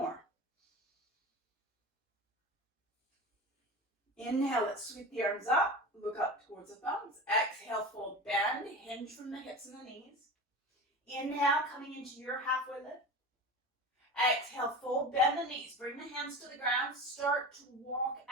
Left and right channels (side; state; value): both; normal; correlation 0.30